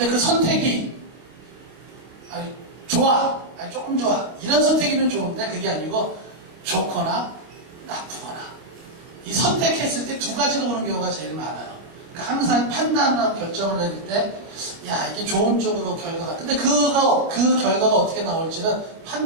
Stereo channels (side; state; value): left; late; 26 ms